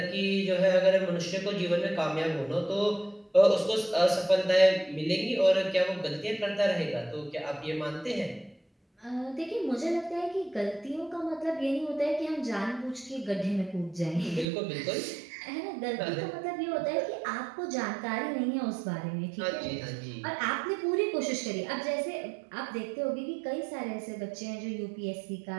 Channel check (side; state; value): left; drops out; at 14.5 s